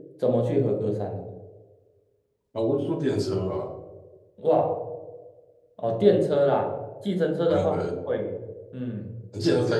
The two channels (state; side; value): identical; both; correlation 1.00